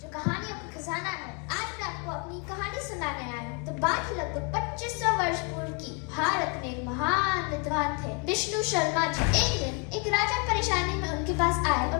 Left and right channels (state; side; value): quieter; right; 33.3 dB